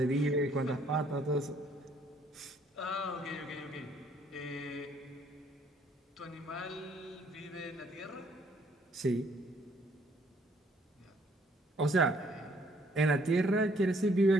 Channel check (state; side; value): normal; both; correlation 0.64